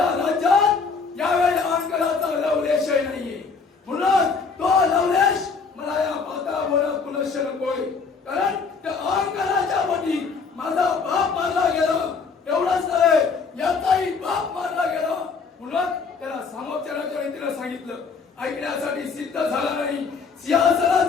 राज्यात यावेळी अहंकाराचा लवलेशही नाहीये, म्हणून तो लवलेश मला या माता बोला पुनश्च नकोय, कारण त्या अहंकाराच्या पोटी माझा बाप मारला गेला, एवढंच नव्हे याचाही बाप मारला गेला, म्हणून त्याला सामोपचाराच्या रीतीने सांगितलं, ऐकण्यासाठी सिद्ध झाला नाही,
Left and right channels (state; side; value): quieter; right; 5.0 dB